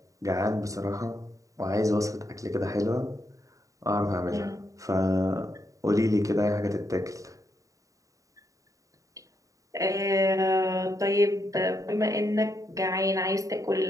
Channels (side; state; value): left; late; 0.16 ms